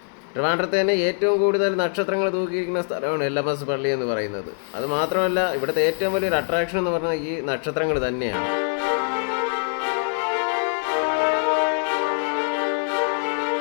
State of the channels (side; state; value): right; silent; 63 dB below the other